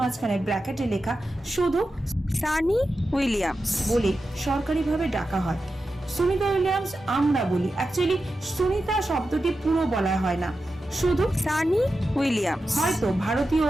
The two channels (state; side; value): normal; both; correlation 0.91